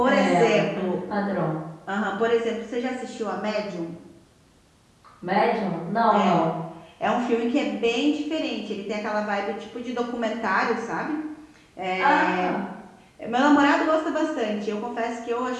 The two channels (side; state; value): both; identical; correlation 1.00